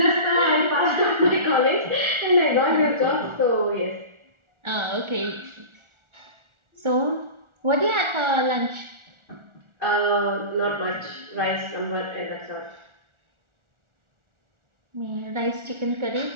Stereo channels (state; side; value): late; left; 1.4 ms